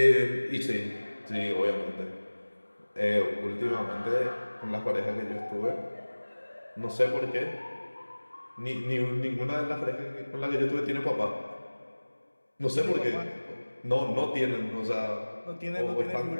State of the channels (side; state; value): both; inverted; correlation -1.00